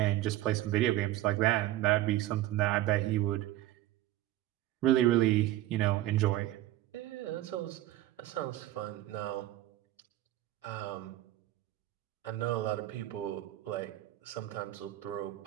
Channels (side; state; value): left; quieter; 14.8 dB